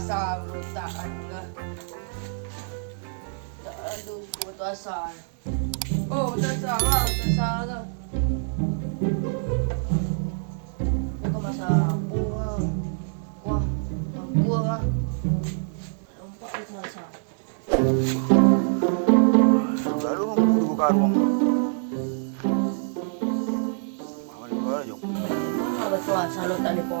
berontakan ke. Tak ada batu asal. Oh, batu asal lah, batu asal ke. Dia kau masak apa lah. Kuah, kuah lah. Nampak batu asal. Lalu nunggu buka ruang. Mana ni kau jom? Batu asal lo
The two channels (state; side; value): silent; left; 61 dB below the other